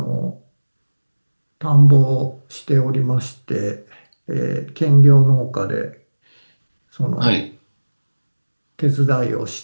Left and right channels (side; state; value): both; inverted; correlation -1.00